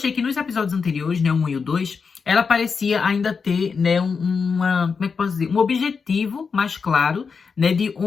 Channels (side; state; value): right; quieter; 5.4 dB